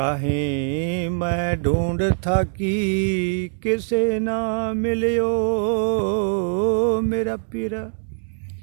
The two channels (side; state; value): left; silent; digital silence